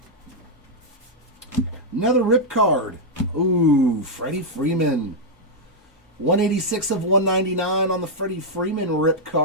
Another rip card. Ooh, Freddie Freeman. 186 of 199 on the Freddie Freeman rip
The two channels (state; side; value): normal; both; correlation -0.04